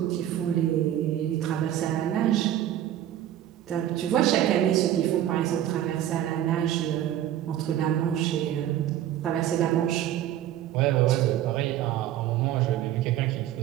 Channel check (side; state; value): left; quieter; 11.9 dB